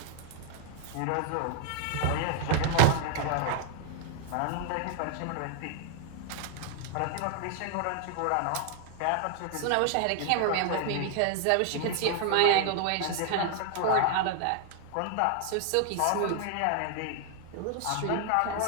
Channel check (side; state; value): both; different; correlation 0.00